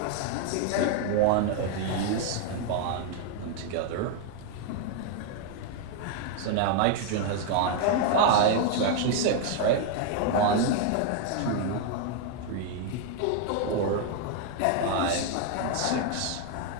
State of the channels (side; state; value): both; different; correlation 0.00